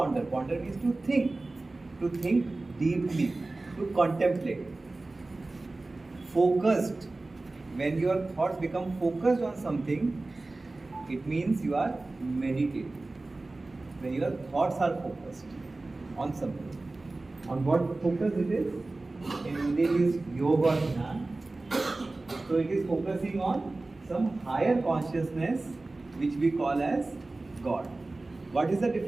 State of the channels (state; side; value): quieter; left; 3.1 dB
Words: Ponder means to think. To think deeply. To contemplate. Focused. When your thoughts become focused on something, it means you are meditating. When your thoughts are focused on something. On what focus it is? In Hindi it is yoga dhyan. So it is focusing on some higher consciousness which we call as God. What is the